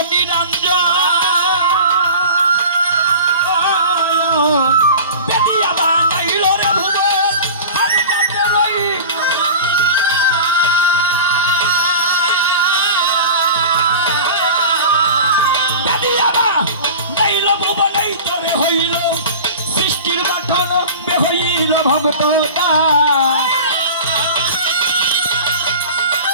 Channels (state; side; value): inverted; both; correlation -0.35